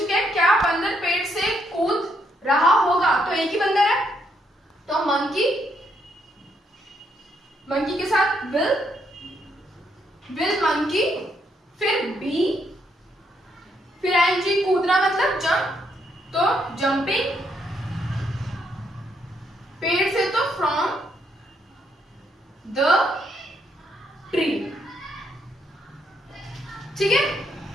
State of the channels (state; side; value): normal; both; correlation 0.75